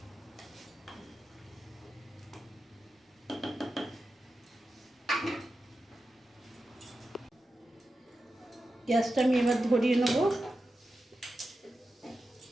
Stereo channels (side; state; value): both; normal; correlation 0.91